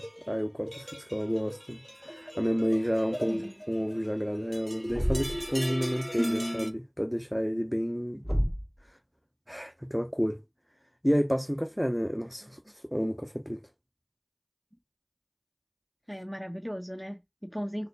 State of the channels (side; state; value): both; identical; correlation 1.00